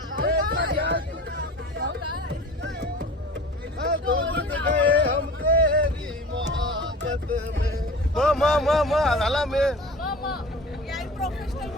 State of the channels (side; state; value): both; normal; correlation 0.39